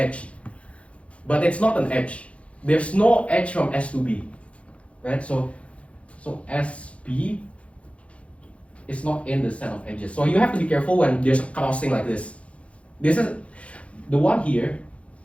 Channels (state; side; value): late; right; 0.062 ms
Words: but it's not an edge. There's no edge from S to B, right? So SB is not in the set of edges. So you have to be careful when there's a crossing like this. This is the one here.